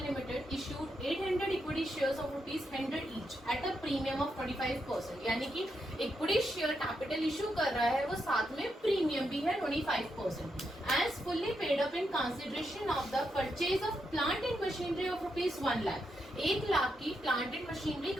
issued 800 equity shares of ₹100 each at a premium of 25%, यानी कि इक्विटी शेयर कैपिटल इशू कर रहा है, वो साथ में प्रीमियम भी है 25%, as fully paid up in consideration of the purchase of plant and machinery of ₹1 lakh. 1 lakh की प्लांट एंड मशीनरी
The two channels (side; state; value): both; normal; correlation 0.83